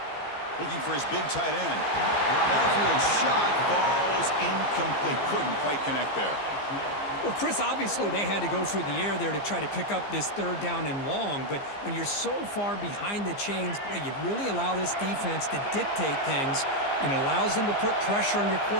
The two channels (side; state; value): right; late; 15 ms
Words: Looking for his big tight end. Downfield shot falls incomplete. Couldn't quite connect there. Well, Chris, obviously they had to go through the air there to try to pick up this 3rd down and long, but when you're so far behind the chains, boy, you really allow this defense to dictate things, and it allows them to put pressure on your